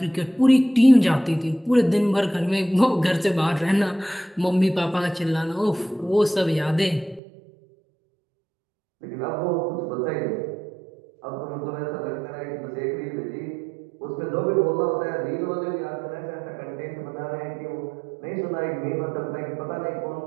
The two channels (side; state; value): left; drops out; at 7.2 s